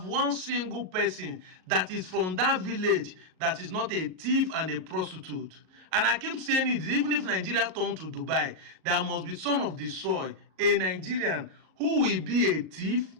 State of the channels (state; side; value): late; left; 38 ms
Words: one single person that is from that village that is not a thief and a prostitute. And I keep saying it, even if Nigeria turn to Dubai, there must be son of the soil, a Nigerian who will be a thief